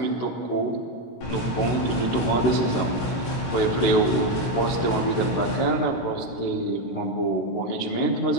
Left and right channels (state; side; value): late; right; 17 ms